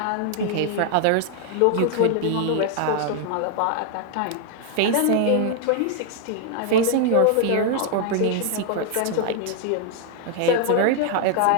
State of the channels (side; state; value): both; different; correlation 0.00